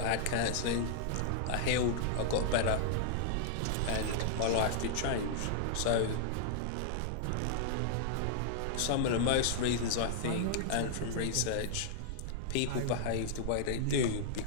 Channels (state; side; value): different; both; correlation -0.01